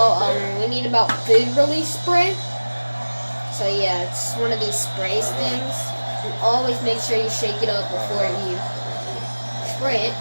we need about food release spray. So yeah, it's one of these sprays things. And always make sure you shake it up before you spray it.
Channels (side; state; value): both; inverted; correlation -1.00